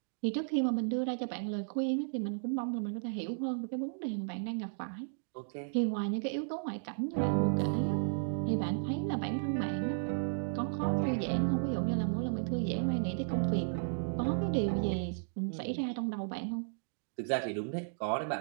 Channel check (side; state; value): left; silent; digital silence